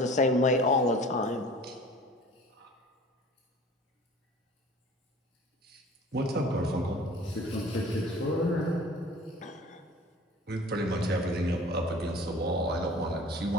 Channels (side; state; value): both; normal; correlation 0.44